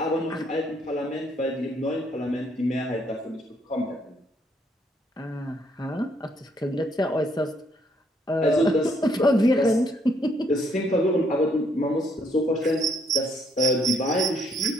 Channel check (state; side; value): normal; both; correlation 0.69